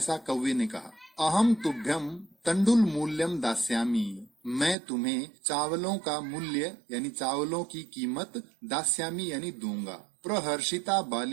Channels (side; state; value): left; drops out; at 4.8 s